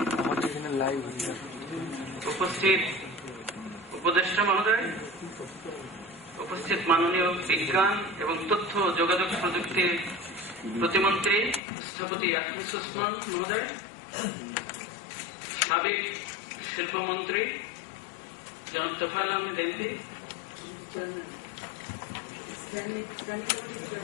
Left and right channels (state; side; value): drops out; right; at 11.6 s